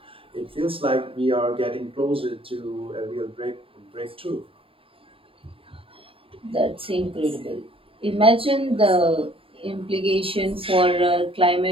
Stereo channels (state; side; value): late; left; 0.27 ms